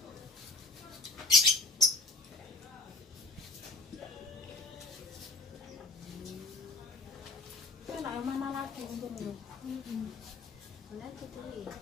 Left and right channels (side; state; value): right; quieter; 3.8 dB